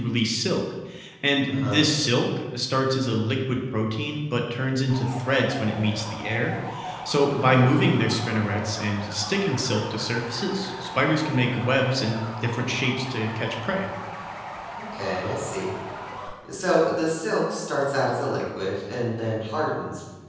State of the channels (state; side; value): identical; both; correlation 1.00